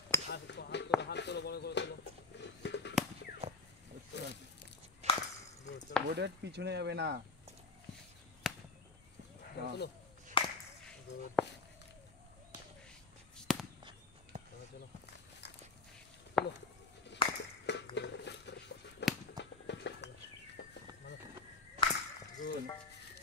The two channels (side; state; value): right; quieter; 3.8 dB